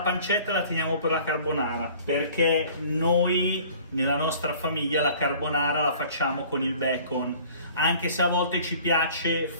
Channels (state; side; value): inverted; both; correlation -0.49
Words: pancetta la teniamo per la carbonara, perché noi nella nostra famiglia la carbonara la facciamo con il bacon, anche se a volte ci piace